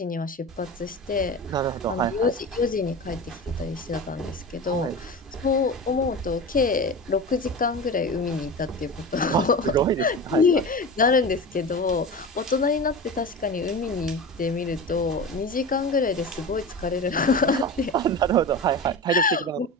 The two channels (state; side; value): normal; both; correlation 0.29